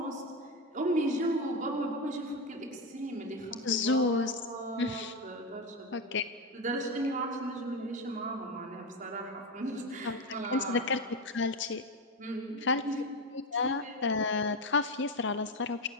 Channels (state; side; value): normal; both; correlation 0.14